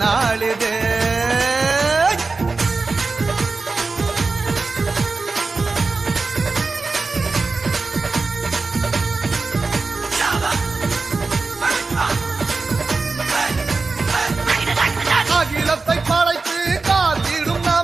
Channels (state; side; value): quieter; left; 3.9 dB